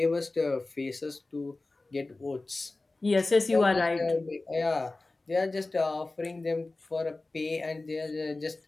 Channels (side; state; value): right; quieter; 3.2 dB